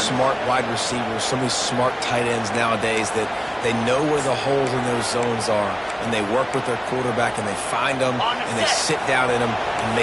wide receivers, so many smart tight ends nowadays that they know where the holes in those zones are, and they work with their quarterback, and they find them, and they sit down in them and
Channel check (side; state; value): both; identical; correlation 1.00